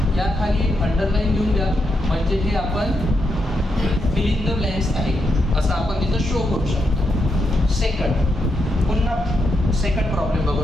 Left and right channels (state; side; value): normal; both; correlation 0.82